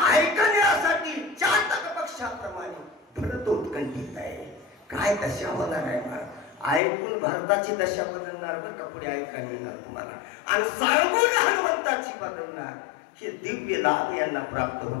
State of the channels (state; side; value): drops out; right; at 6.8 s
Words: ऐकण्यासाठी चातक पक्षाप्रमाणे भरत उत्कंठित आहे. काय दशा होणार आहे मला ऐकून, भारताची दशा बदलणार बरं का, पुढे ऐकायला मिळणार तुम्हाला. आणि सांगून हनुमंताची बदलणार. हे दिव्य लाभ यांना प्राप्त